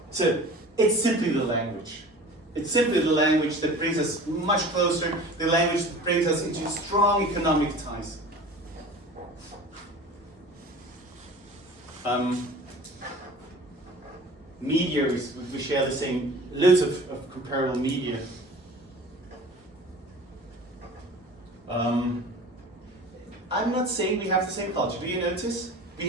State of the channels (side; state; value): both; normal; correlation 0.40